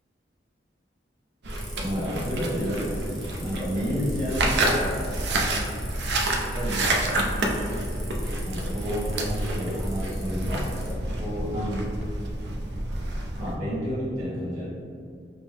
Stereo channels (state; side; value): normal; both; correlation 0.56